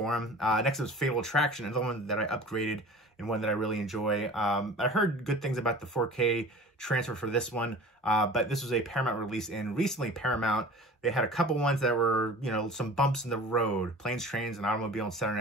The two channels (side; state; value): both; normal; correlation 0.41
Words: them. Next is Fatal Attraction, another one that I upgraded and one that I really enjoy. I heard good things about the 4K transfer for this one, but this was a Paramount release, and recently Paramount, they had a couple ones that were, some bumps in the road. Planes, Trains, and Automobile and